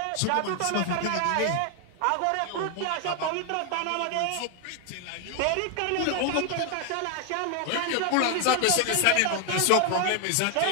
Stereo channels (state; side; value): different; both; correlation 0.00